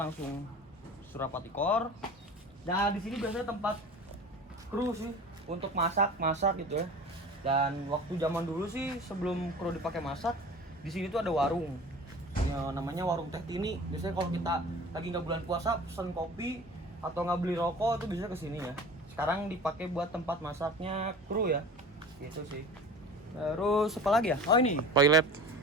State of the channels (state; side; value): normal; both; correlation 0.39